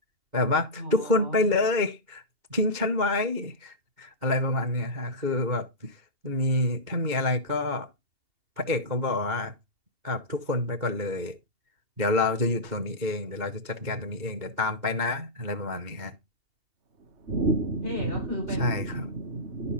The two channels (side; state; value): left; late; 2.8 ms